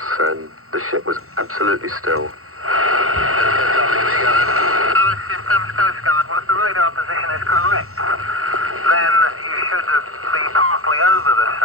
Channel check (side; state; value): left; late; 0.63 ms